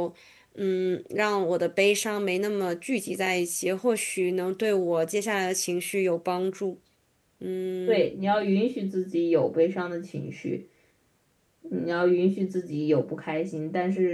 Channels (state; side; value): identical; both; correlation 1.00